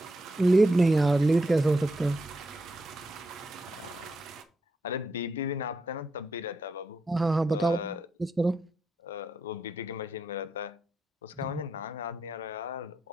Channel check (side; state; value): both; normal; correlation 0.84